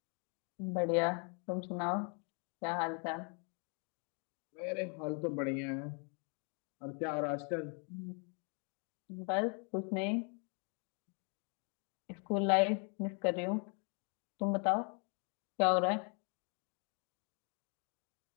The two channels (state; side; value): quieter; right; 37.9 dB